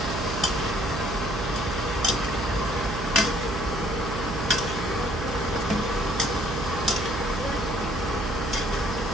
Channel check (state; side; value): noise; right; hum, 4 dB below the sound